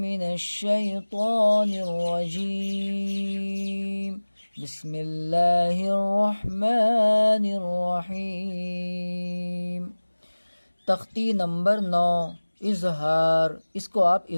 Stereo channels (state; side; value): inverted; both; correlation -1.00